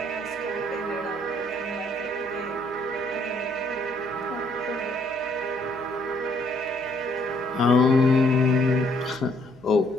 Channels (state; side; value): noise; right; hum, 26 dB below the sound